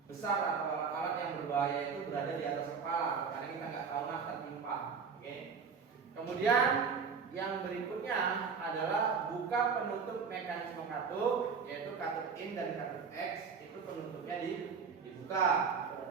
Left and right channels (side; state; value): left; quieter; 5.7 dB